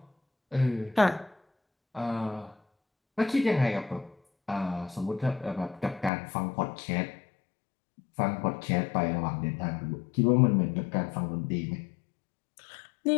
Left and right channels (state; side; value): drops out; right; at 6.1 s